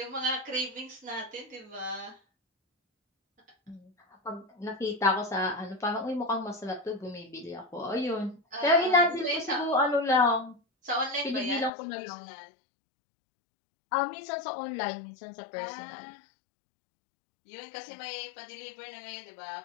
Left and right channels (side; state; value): right; drops out; at 11.7 s